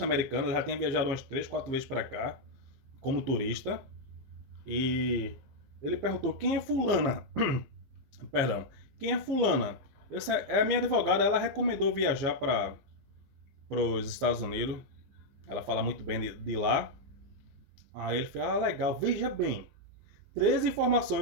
ela já tinha viajado umas 3, 4 vezes para cá como turista. E ele perguntou: quem é fulana? Perdão, quem é fulana? Essa é a minha advogada, ela recomendou viajar para os Estados Unidos. Ela fala muito bem de lá. Aí ele falou: ah, legal, veja bem. 3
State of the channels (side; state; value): left; late; 15 ms